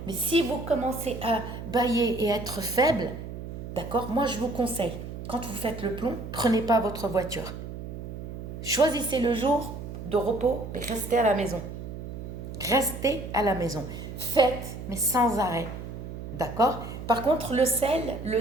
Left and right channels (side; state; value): right; noise; hum, 9 dB below the sound